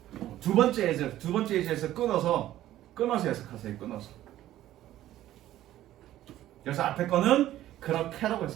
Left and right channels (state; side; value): quieter; left; 13.6 dB